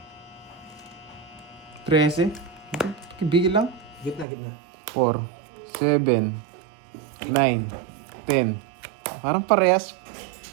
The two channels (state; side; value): drops out; left; at 4.2 s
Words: 13. Bigil lang. Gitna, gitna. 4, 7, 9, 10. Parang parehas.